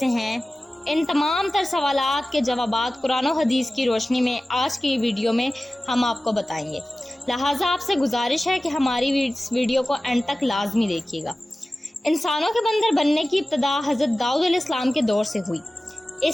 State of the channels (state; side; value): normal; both; correlation 0.96